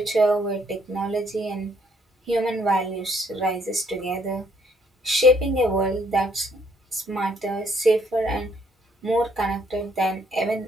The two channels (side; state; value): both; normal; correlation 0.67